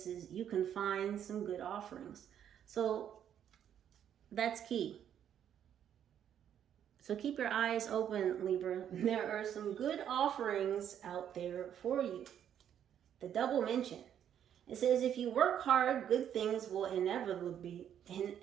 you can find some good offerings. So that's key. So keep your eyes open, Libra. There are some good offerings out there for you. The double mention. It says, if you work hard, good things will inevitably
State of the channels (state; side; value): quieter; left; 9.6 dB